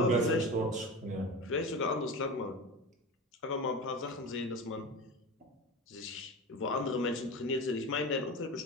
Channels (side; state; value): both; normal; correlation 0.28